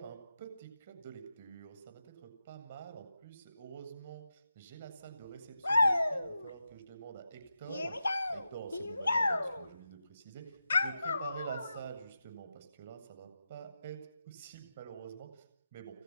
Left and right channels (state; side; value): inverted; both; correlation -0.89